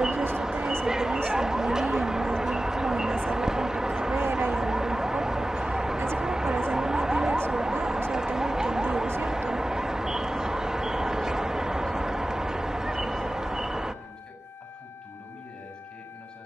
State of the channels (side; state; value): both; normal; correlation 0.95